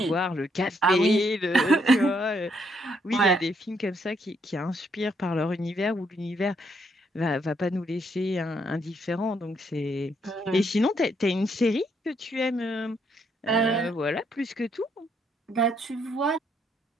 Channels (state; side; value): normal; both; correlation 0.73